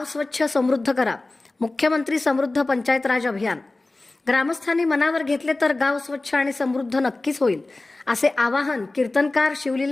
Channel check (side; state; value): right; quieter; 3.1 dB